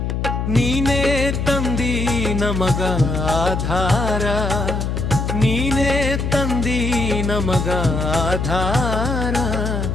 ನೀನೇ ತಂದಿ ನಮಗ ಆಧಾರ, ನೀನೇ ತಂದಿ ನಮಗ ಆಧಾರ.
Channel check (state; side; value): noise; left; hum, 1 dB below the sound